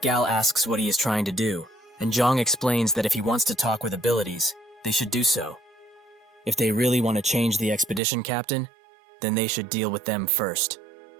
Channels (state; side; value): drops out; left; at 8.0 s